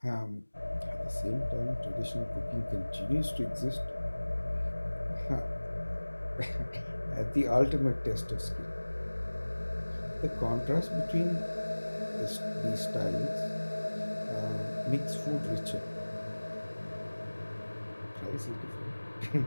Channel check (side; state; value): both; inverted; correlation -1.00